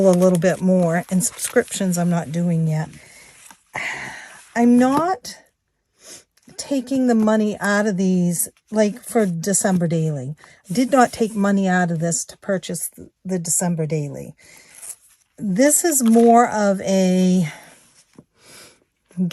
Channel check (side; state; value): both; identical; correlation 1.00